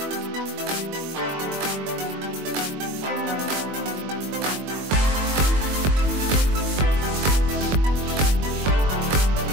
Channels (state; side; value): late; left; 21 ms